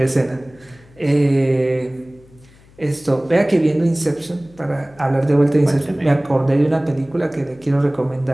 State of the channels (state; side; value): noise; left; hum, 27 dB below the sound